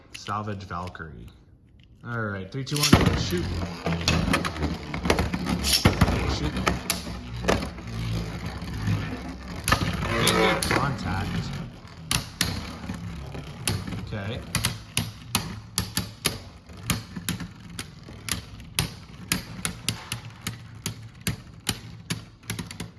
Salvage Valkyrie. All right, 3, 2, 1, shoot. Shoot. Good contact. Okay.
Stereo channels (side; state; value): both; identical; correlation 1.00